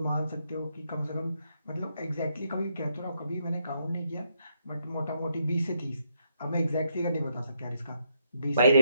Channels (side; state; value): both; inverted; correlation -0.77